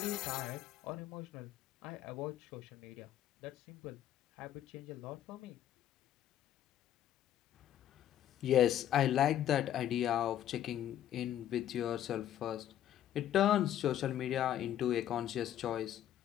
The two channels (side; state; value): right; quieter; 11.5 dB